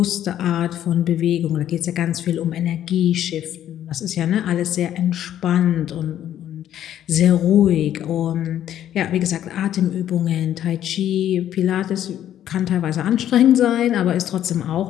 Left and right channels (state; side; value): quieter; right; 11.2 dB